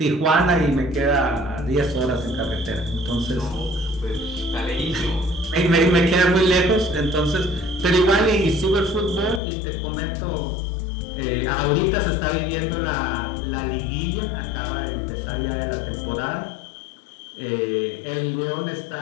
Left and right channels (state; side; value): drops out; right; at 9.4 s